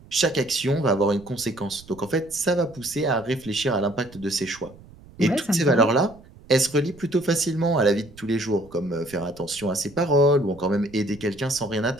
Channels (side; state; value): right; noise; rumble, 22 dB below the sound